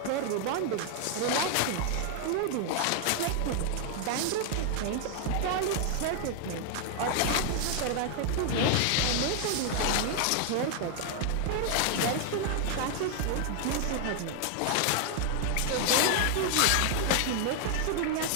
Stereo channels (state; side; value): different; both; correlation 0.00